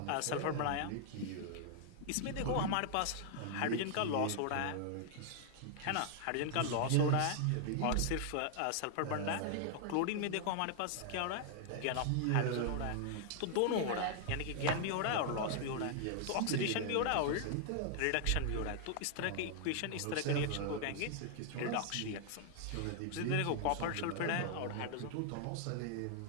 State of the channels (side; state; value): both; different; correlation 0.00